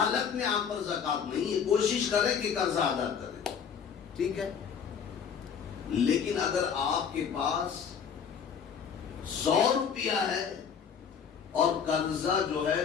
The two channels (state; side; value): quieter; right; 7.2 dB